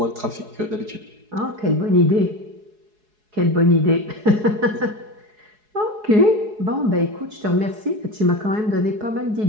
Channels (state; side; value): late; left; 4.7 ms